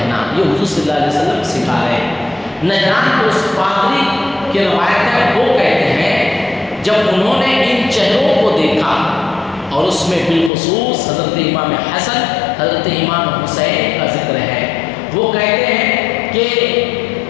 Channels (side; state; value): right; drops out; at 10.5 s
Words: یہ حضور صلی اللہ علیہ وسلم سکھا رہے ہیں۔ نجران کو اس پادری کی روایت ہے، وہ کہتے ہیں جب انہوں نے ان چہروں کو دیکھا اور اس میں بالخصوص حضرت امام حسن، حضرت امام حسین کا ذکر ہے، وہ کہتے ہیں کہ